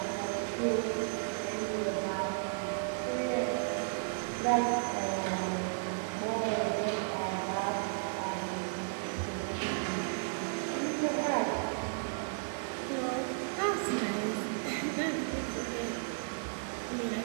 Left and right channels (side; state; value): left; silent; 55 dB below the other